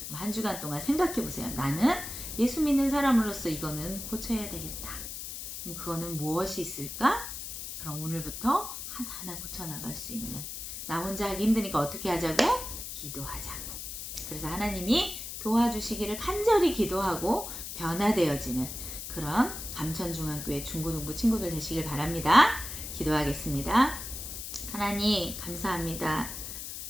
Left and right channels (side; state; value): left; noise; hiss, 8 dB below the sound